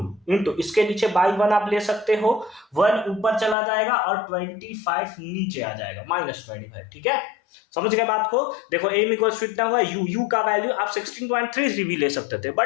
इसके नीचे बाई 1 आप ले सकते हो, 1 ऊपर चला जाएगा और 25 नीचे आ जाएगा, -25। ठीक है, समझ गए बात को? देखो एम इक्वल्स टू इतना हुआ, यू का वैल्यू आप 16.33 भी ले सकते थे,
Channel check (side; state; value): right; drops out; at 3.6 s